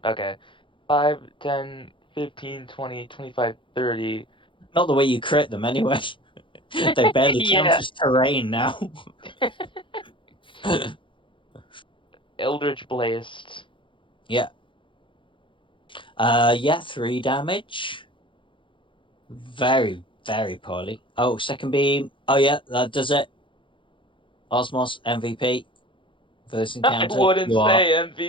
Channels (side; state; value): right; late; 0.24 ms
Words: Okay. 5, 10, 15, 20, 25, 30. Not the way you crit them, anyway. They barely count Yeah. as terrain now. Eldritch Blast. Yeah. Yeah, 3 damage. Very, very poorly. Oh, second beam. Oh, yeah, that does it. Osmos, MVP for this I encounter. wouldn't You are say out